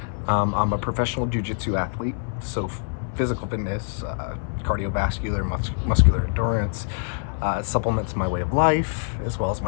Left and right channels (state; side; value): silent; right; 59 dB below the other